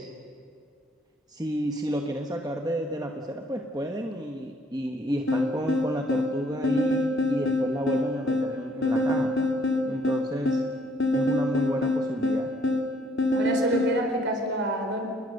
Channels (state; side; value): normal; both; correlation 0.64